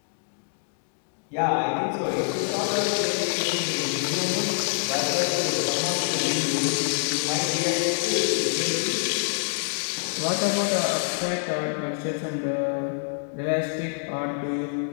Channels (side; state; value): right; silent; 61 dB below the other